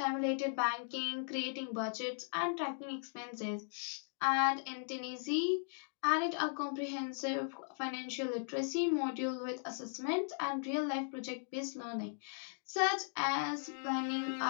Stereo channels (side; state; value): right; silent; digital silence